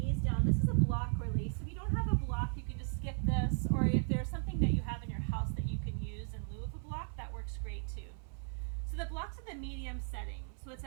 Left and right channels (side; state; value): left; silent; 54 dB below the other